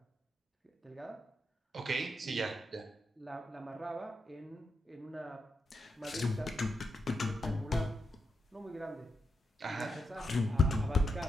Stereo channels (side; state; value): both; normal; correlation 0.84